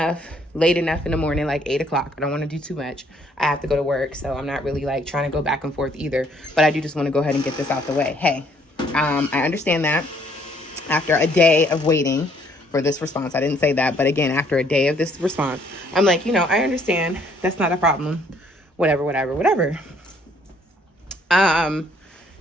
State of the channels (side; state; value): both; normal; correlation 0.64